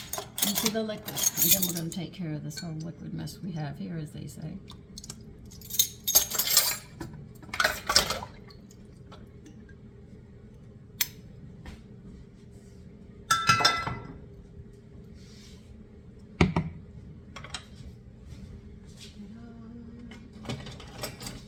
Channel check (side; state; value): both; identical; correlation 1.00